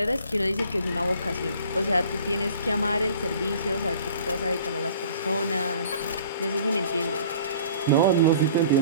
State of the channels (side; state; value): both; inverted; correlation -0.49